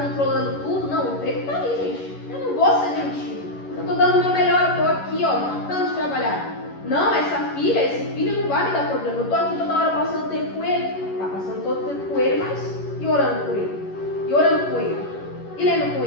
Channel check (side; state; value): right; late; 11 ms